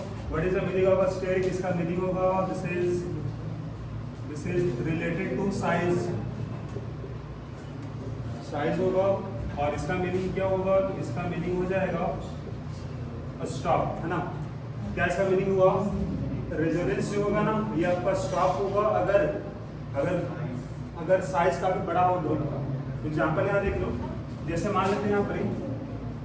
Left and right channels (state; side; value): identical; both; correlation 1.00